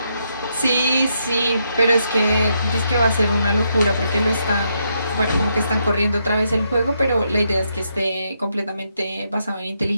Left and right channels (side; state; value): both; inverted; correlation -0.79